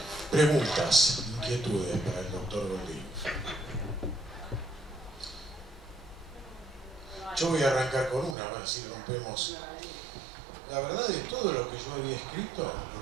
Preguntas, inquietudes para el doctor Goldín. Yo voy a arrancar con una, a ver si rompemos. La verdad de todo lo que yo había escrito,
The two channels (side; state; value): left; drops out; at 8.3 s